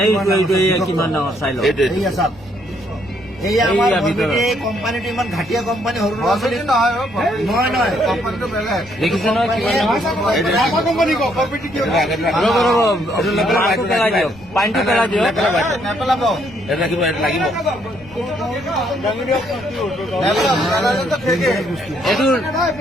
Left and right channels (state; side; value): noise; left; rumble, 22 dB below the sound